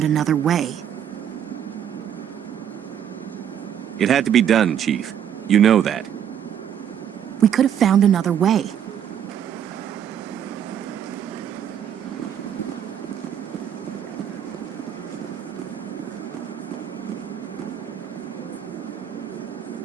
another way. It had to be done, Chief. You know that. We could have found another way.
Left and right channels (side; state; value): left; quieter; 9.3 dB